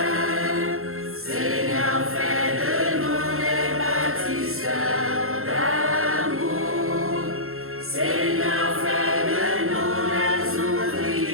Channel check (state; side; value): late; left; 0.62 ms